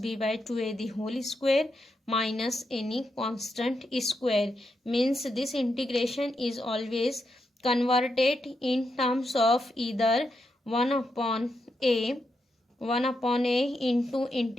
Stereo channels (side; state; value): both; normal; correlation 0.84